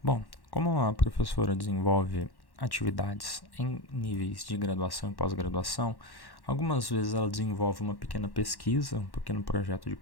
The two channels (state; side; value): late; right; 1.1 ms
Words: Bom, como a professora desenvolve atividades em níveis de graduação e pós-graduação, algumas vezes ela desenvolve uma pequena pesquisa, um pequeno projeto de